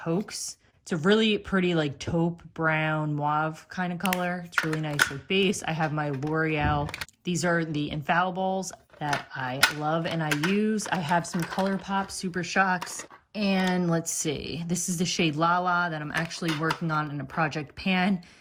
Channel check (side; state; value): both; identical; correlation 1.00